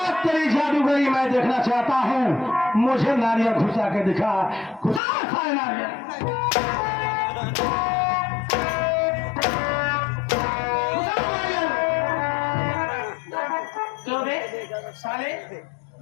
तेरी जादूगरी मैं देखना चाहता हूँ, मुझे नारियल घुसा के दिखा। घुसा सारे नारियल। क्यों बे साले,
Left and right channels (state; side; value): drops out; right; at 5.0 s